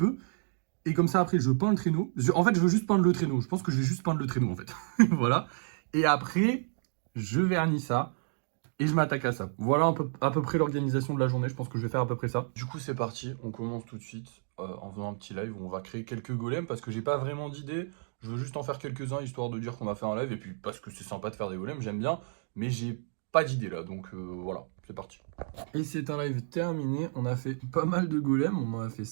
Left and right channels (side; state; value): left; silent; 57 dB below the other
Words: Et comme ça après je peins le traîneau. En fait je veux juste peindre le traîneau. Je pense que je vais juste peindre le traîneau en fait. Voilà. Et après, je vernis ça et je m'attaque à ça. Voilà à peu près l'organisation de la journée. Je pense que je vais faire à peu près ça. Du coup c'est parti, on commence tout de suite en faisant un petit live où on va créer quelques golems parce que j'ai pas vraiment d'idée. Je veux juste en faire quelques-uns histoire de dire qu'on a fait un live et puis parce que c'est sympa de faire des golems, j'aime bien. Mais j'ai pas d'idée là, donc voilà, c'est parti. Et c'est un live terminé, on a fait pas mal de golems, on en a fait